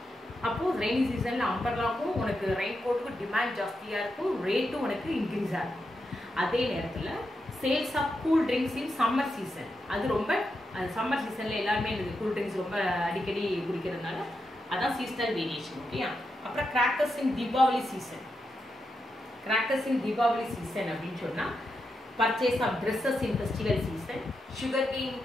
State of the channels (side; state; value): both; normal; correlation 0.86